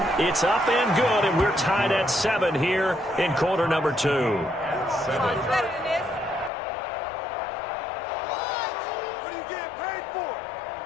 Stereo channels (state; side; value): drops out; right; at 6.5 s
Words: It's up and good, and we're tied at 7 here in quarter number 2.